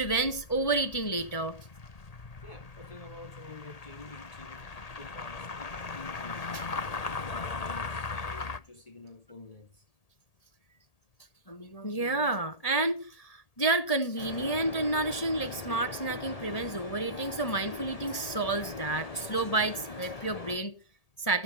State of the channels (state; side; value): late; right; 1.8 ms